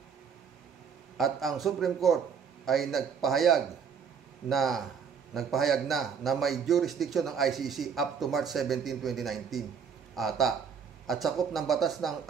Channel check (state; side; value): quieter; left; 6.7 dB